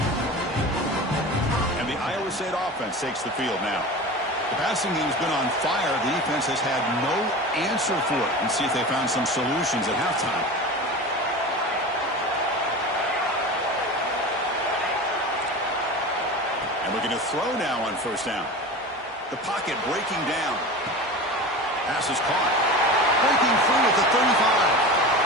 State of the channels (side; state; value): both; normal; correlation 0.31